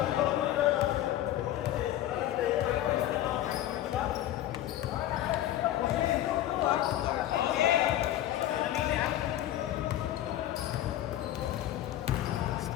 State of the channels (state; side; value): quieter; right; 13.1 dB